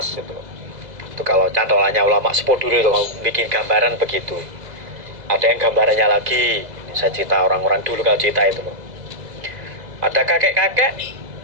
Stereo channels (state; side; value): late; left; 2.0 ms